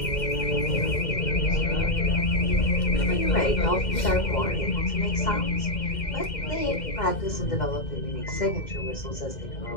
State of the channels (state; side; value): late; right; 2.1 ms